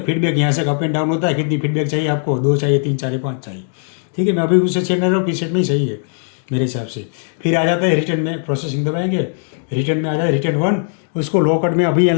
फीडबैक यहाँ से अप एंड डाउन होता है, कितनी फीडबैक चाहिए आपको, 2 चाहिए, 3 चाहिए, 5 चाहिए, ठीक है। मैं अभी उससे चेक नहीं रहा हूँ, पीसेट में ही सही है मेरे हिसाब से। फिर आ जाता है रिटर्न में, प्रोसेसिंग दबाएंगे, रिटर्न में आ जाए रिटर्न 1, उसको लो कट में अभी यहाँ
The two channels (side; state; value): right; silent; digital silence